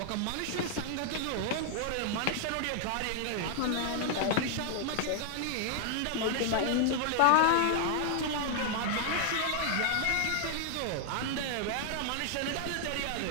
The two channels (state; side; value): different; both; correlation 0.00